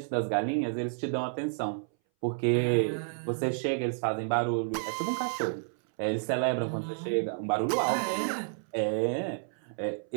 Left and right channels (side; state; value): left; silent; 58 dB below the other